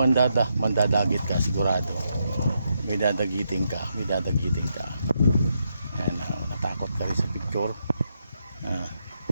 ka sigurado. May dadagiting ka. Ayan, natakot ka rin sa picture. May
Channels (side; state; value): both; inverted; correlation -0.81